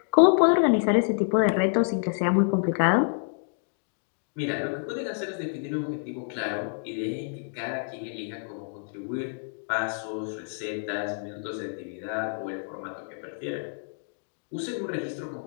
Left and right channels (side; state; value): right; silent; digital silence